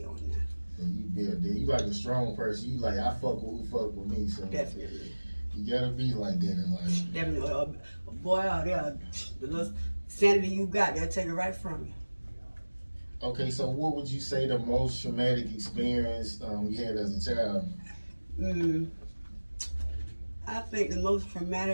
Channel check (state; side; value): inverted; both; correlation -1.00